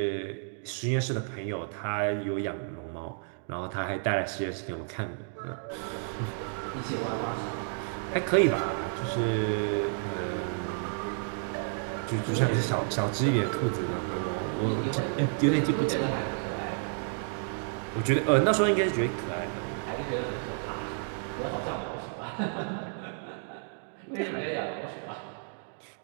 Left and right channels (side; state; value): left; silent; 57 dB below the other